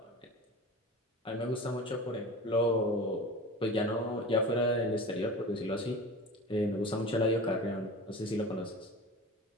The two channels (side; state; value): both; normal; correlation 0.34